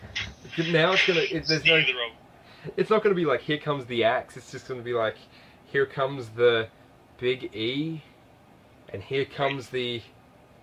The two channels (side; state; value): both; identical; correlation 1.00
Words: Now it's not gonna be like, here comes the axe. It's just gonna be like, here comes the Big E, and here comes the